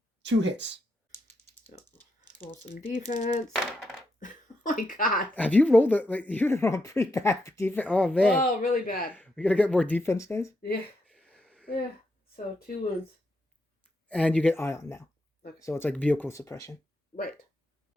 2 hits. So, roll some defense. Oh my god. Have you rolled it? Like, you rolled pretty bad for defense. Oh man. Oh, really bad. We gotta get more defense dice. Yeah. Yeah. So 2 wounds. And you get ion now. Okay. So it's like vehicle suppression. Right.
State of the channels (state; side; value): normal; both; correlation 0.81